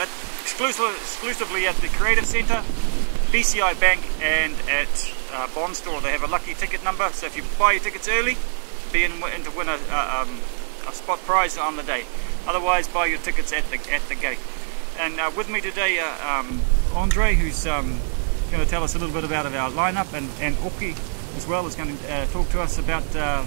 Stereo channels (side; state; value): left; silent; digital silence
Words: exclusively at the Creative Centre, BCI Bank and at Bond Store. They have a lucky ticket number, so if you buy your tickets early, be in to win a spot prize on the day. Otherwise, buy your tickets at the gate. And with me today, Andre, who's going to tell us a little bit about our lineup, and Oki as well is going to talk to us about